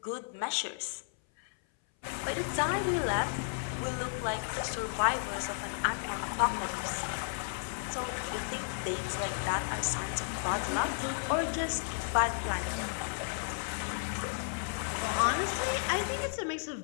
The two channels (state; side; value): silent; right; 56 dB below the other